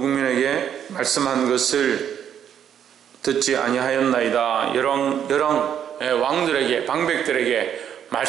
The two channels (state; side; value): quieter; left; 9.2 dB